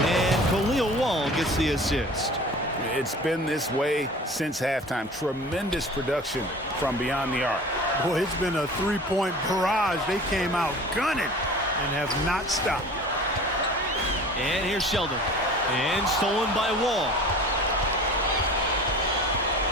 Khalil Wall gets the assist. It's been this way since halftime. Tremendous production from beyond the arc. Boy, it's been a three-point barrage. They came out gunning and have not stopped. And here's Sheldon. And stolen by Wall.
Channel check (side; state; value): both; normal; correlation 0.41